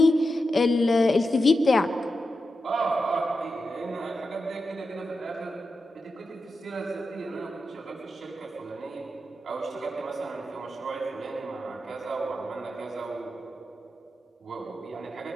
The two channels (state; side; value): normal; both; correlation 0.89